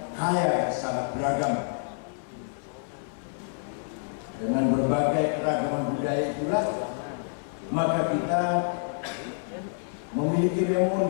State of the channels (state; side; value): silent; right; 59 dB below the other